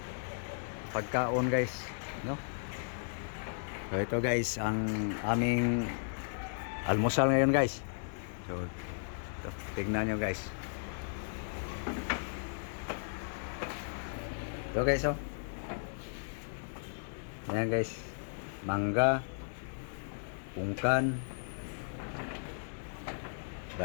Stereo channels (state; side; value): silent; right; digital silence